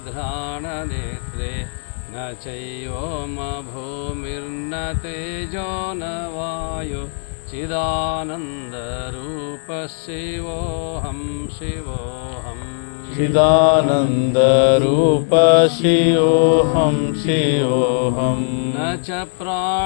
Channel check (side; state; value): right; silent; digital silence